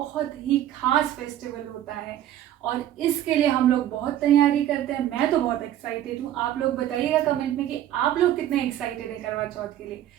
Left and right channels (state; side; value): quieter; left; 12.2 dB